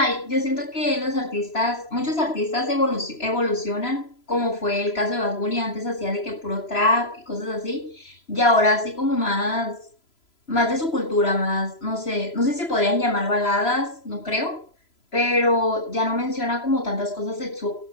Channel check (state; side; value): late; right; 3.0 ms